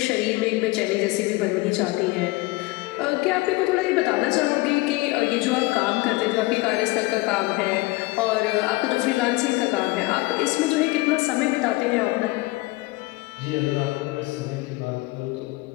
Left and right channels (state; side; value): quieter; right; 22.1 dB